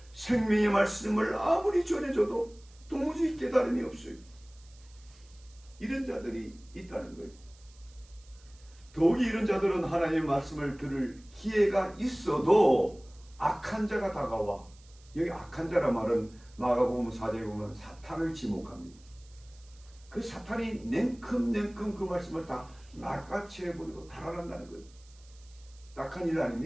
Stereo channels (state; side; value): noise; right; hiss, 27 dB below the sound